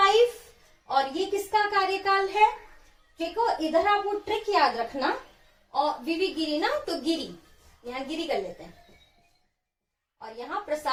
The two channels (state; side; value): identical; both; correlation 1.00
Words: और ये किसका कार्यकाल है, देखो इधर आप वो ट्रिक याद रखना, और वीवी गिरी ना, तो गिरी, यहाँ गिरी कर लेते हैं, और यहाँ